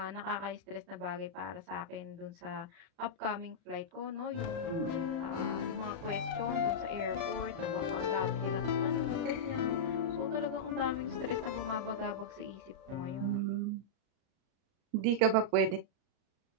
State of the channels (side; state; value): left; late; 37 ms